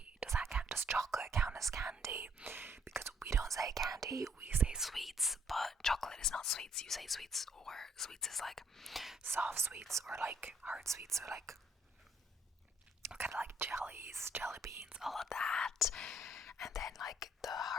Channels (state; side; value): normal; both; correlation 0.66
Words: chocolate count as candy? Because we don't say candy, we say sweets, but chocolate is not sweets. You say sweets, or sweets is like soft sweets, or like hard sweets, or like kind of like jellies, jelly beans, all of that. And then like the